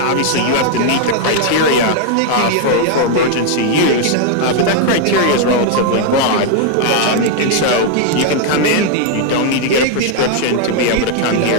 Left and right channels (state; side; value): different; both; correlation 0.00